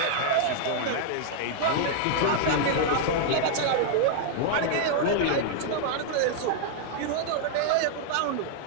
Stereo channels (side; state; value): both; different; correlation 0.00